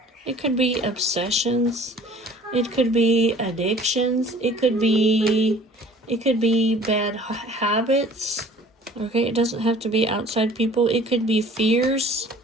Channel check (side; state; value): both; normal; correlation 0.49